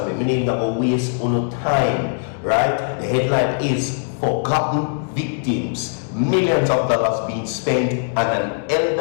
me? My name not going to waste on time, right? The headline is Forgotten Victims. Millions of dollars being spent, and an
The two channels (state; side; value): silent; right; digital silence